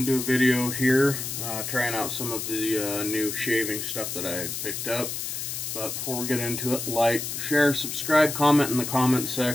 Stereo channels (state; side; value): noise; left; hiss, 5 dB below the sound